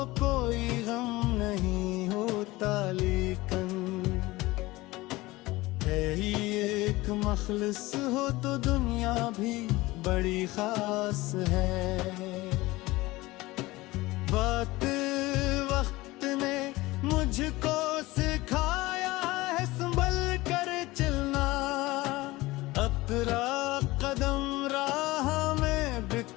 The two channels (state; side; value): quieter; right; 19.9 dB